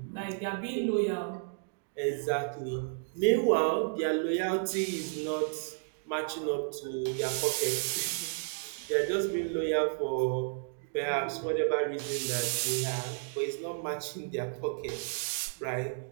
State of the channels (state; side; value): silent; left; digital silence